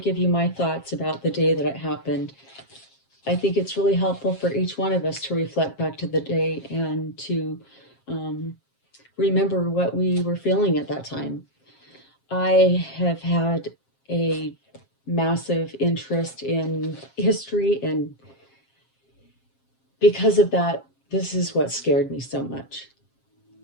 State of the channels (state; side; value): late; right; 7.5 ms